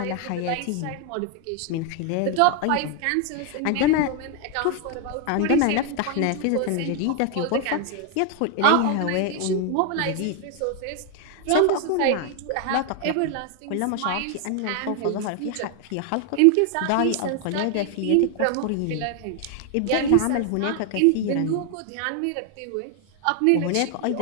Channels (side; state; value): both; different; correlation 0.01